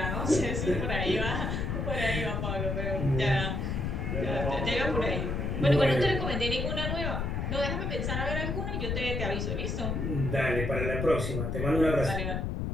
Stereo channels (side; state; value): left; noise; rumble, 1 dB below the sound